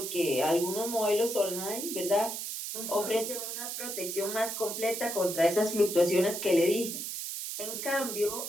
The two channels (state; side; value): noise; right; hiss, 5 dB below the sound